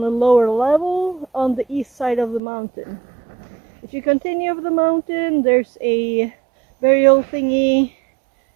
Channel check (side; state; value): left; drops out; at 2.4 s